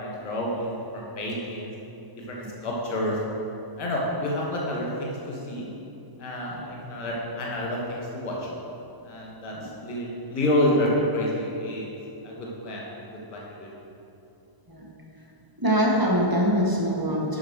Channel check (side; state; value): left; late; 1.0 ms